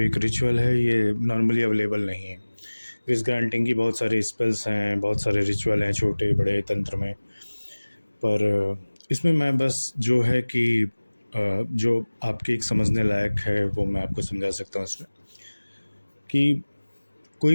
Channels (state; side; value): inverted; both; correlation -1.00